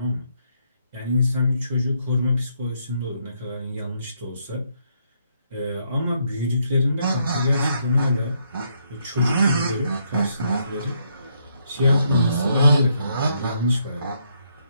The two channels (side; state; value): both; inverted; correlation -0.74